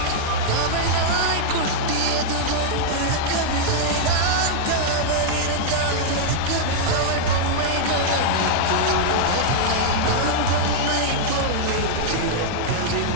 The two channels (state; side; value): different; both; correlation -0.02